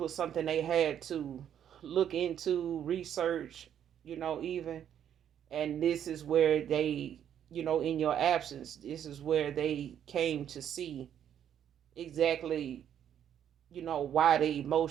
something they had to look into, research, even, and this is where they, in your absence, this is where they came to see exactly, why the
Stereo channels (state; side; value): quieter; left; 9.6 dB